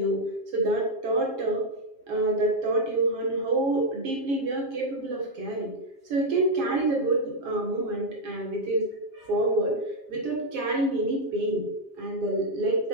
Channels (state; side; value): late; left; 7.4 ms